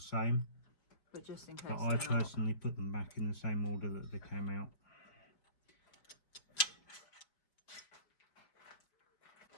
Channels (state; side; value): late; right; 5.2 ms